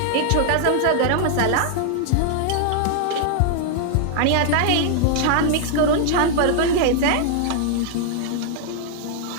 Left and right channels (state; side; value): different; both; correlation 0.00